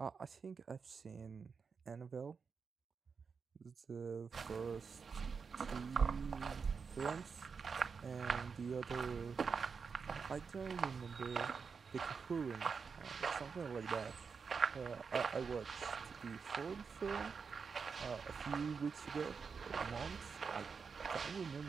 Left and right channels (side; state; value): left; quieter; 5.6 dB